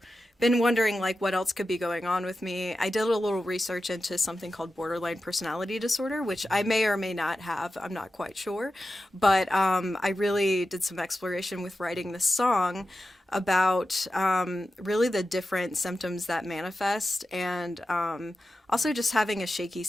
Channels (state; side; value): normal; both; correlation 0.92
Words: been wondering what else could be going on with me. I did a little research into something called borderline personality disorder, which I may or may not have. I'm not quite sure, but I really did some exploration with writing this song about really the different symptoms that manifest, and also just having a shaky